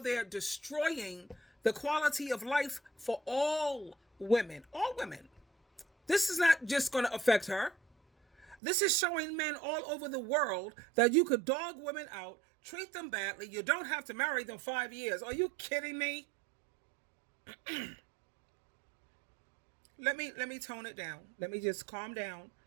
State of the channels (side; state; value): left; drops out; at 8.6 s